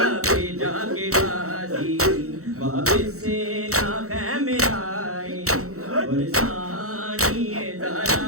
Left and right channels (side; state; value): left; late; 0.64 ms